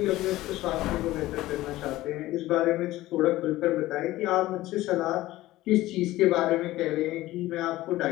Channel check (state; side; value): quieter; right; 16.7 dB